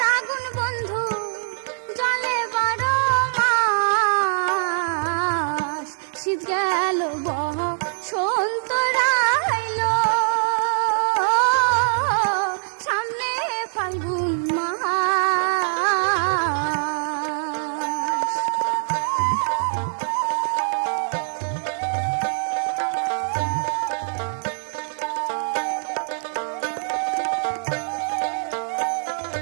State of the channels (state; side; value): silent; left; digital silence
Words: আগুন বন্ধু জলে বারো মাস। শীত গেল বহ সন্ত রাইল, সামনে ফাল্গুন মাস।